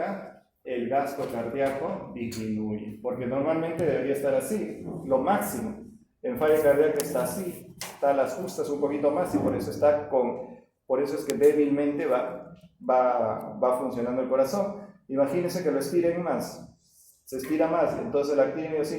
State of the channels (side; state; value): both; identical; correlation 1.00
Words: el gasto cardíaco disminuye, porque normalmente debería estar así, lo máximo. En falla cardíaca está así, está a las justas un poquito más y por eso es que débilmente va funcionando el corazón. Imagínense que lo estiren más, se estira más, entonces la actina